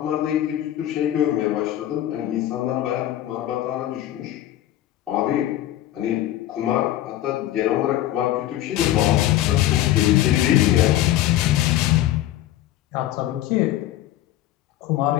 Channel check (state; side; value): quieter; right; 13.3 dB